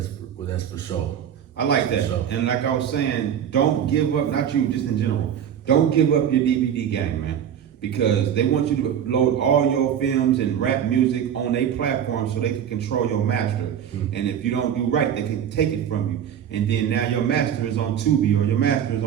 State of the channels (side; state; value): left; quieter; 9.1 dB